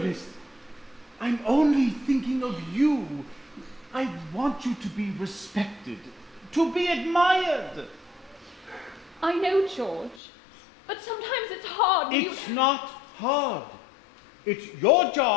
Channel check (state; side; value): drops out; right; at 10.2 s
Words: I'm only thinking of you. I want you to be respected, to be admired. I know, George. But sometimes it's hard. It's not hard. It's your